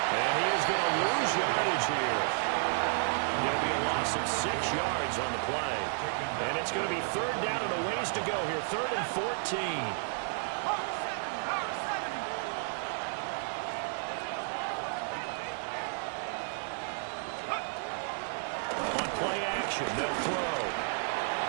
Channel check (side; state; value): left; silent; 56 dB below the other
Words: he is going to lose yardage here. It'll be a loss of 6 yards on the play. And it's going to be 3rd down and a ways to go here. 3rd and 14. On play action, they'll throw.